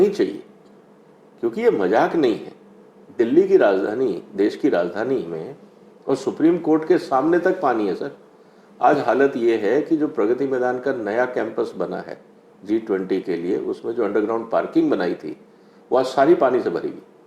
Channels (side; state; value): both; identical; correlation 1.00